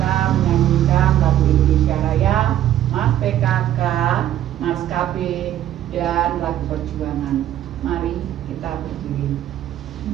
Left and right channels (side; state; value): left; quieter; 12.0 dB